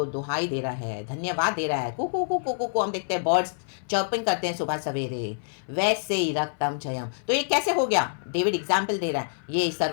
दुहाई दे रहा है, धन्यवाद दे रहा है। कुकू कुकू कुकू, हम देखते हैं बर्ड्स चर्पिंग करते हैं सुबह सवेरे, वैसे ही रक्तम जयम। तो ये कैसे हो गया? डेविड एग्जाम्पल दे रहा है, ये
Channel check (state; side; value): silent; right; 58 dB below the other